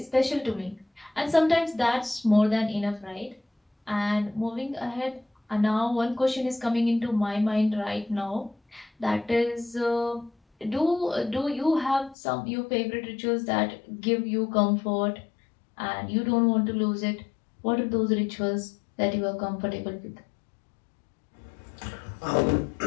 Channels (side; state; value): right; drops out; at 12.2 s